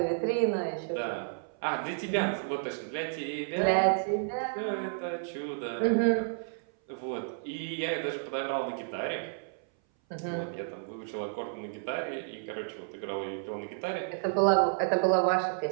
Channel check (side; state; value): left; silent; 57 dB below the other